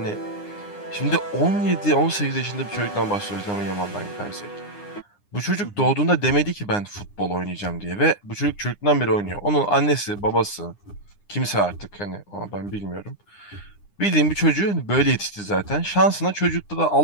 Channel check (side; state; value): right; late; 9.8 ms